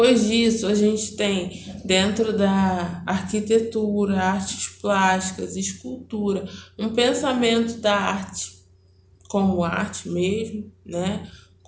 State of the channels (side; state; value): both; identical; correlation 1.00